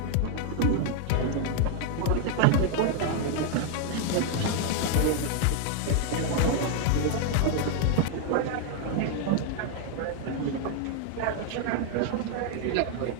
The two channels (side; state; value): both; different; correlation 0.00